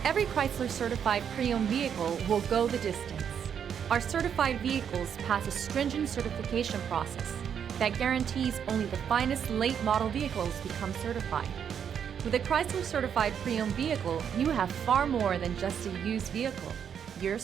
Every Chrysler certified pre-owned vehicle will go the distance. Our certified vehicles pass a stringent certification process that guarantees only the finest late model vehicles become certified. With a Chrysler certified pre-owned vehicle, you have far more than just a used vehicle. You're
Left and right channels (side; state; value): left; quieter; 8.0 dB